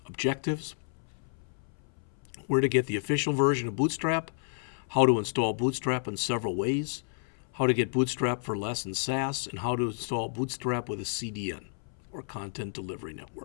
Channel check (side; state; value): right; silent; 57 dB below the other